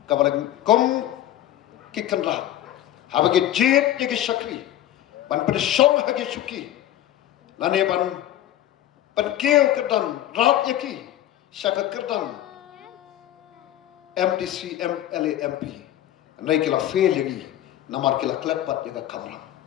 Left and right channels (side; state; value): right; quieter; 12.7 dB